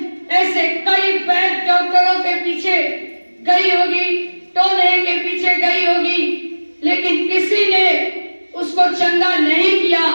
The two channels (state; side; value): inverted; both; correlation -1.00